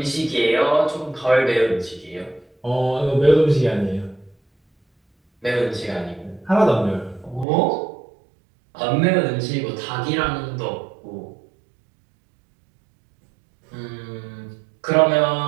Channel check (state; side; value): drops out; left; at 7.5 s